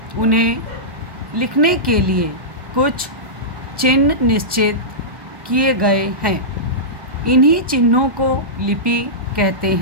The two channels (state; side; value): late; left; 1.2 ms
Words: उन्हें लिखने के लिए कुछ चिन्ह निश्चित किए गए हैं। इन्हीं चिन्हों को लिपि कहते